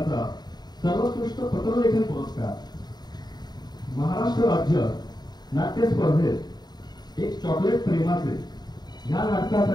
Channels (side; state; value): right; late; 0.20 ms